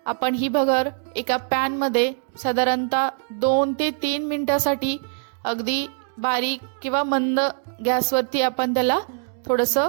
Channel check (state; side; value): silent; left; digital silence